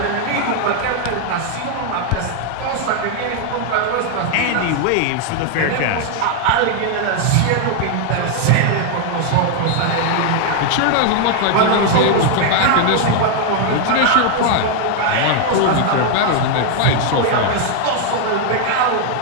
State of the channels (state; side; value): different; both; correlation 0.00